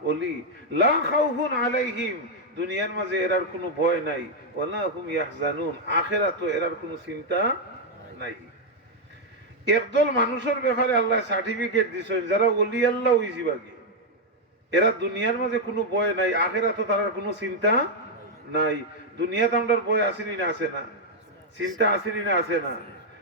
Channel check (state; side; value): normal; both; correlation -0.01